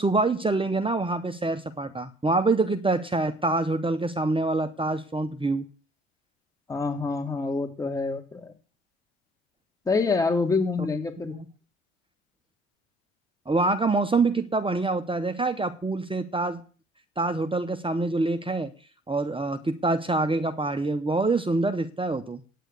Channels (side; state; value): both; normal; correlation 0.58